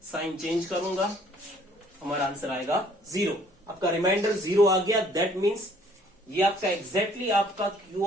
साइन चेंज करूंगा, हमारा आंसर आएगा 0। आपका रिमाइंडर 0 आ गया, दैट मीन्स ये आपका एग्जैक्टली आपका q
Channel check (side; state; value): both; normal; correlation 0.60